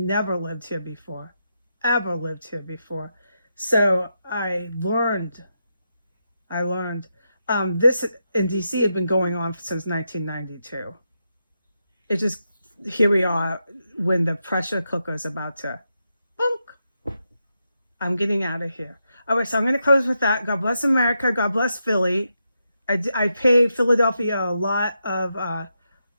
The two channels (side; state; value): both; inverted; correlation -0.84